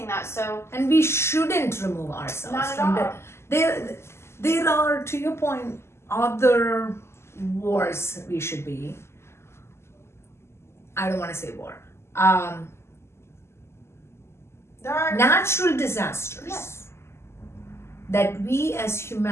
that. So, and we shouldn't remove ourselves not at from all. There are, to your point, other wars we should be. I don't want to say war. There are natural disasters. Yes. That we as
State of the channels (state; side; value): late; right; 0.13 ms